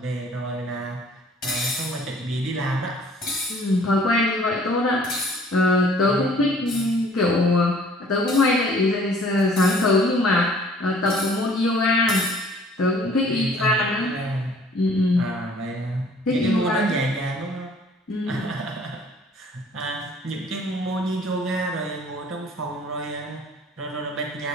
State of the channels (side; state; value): both; normal; correlation 0.55